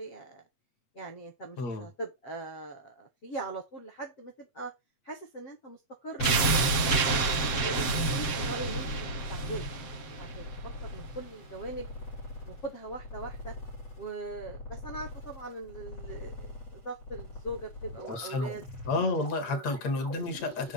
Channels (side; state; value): right; late; 7.7 ms